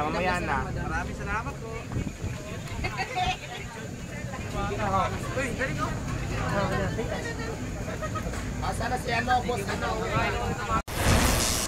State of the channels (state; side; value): identical; both; correlation 1.00